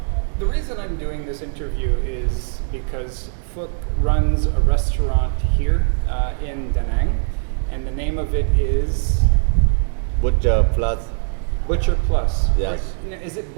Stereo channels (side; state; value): left; silent; digital silence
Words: the reason I'm doing this interview is because Phuc runs a restaurant here in Danang, and the name of it is Butcher Plus. Butcher Plus. Yes. Or, is it